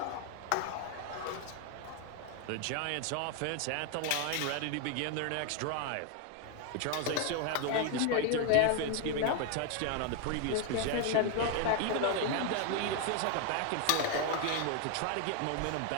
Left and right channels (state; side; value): different; both; correlation 0.01